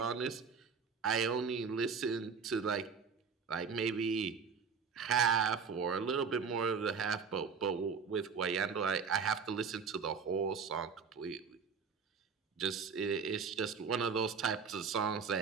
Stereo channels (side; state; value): left; quieter; 5.8 dB